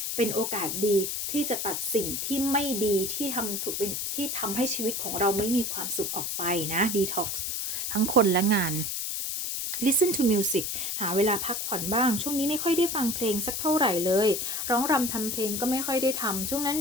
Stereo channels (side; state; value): left; noise; hiss, 2 dB below the sound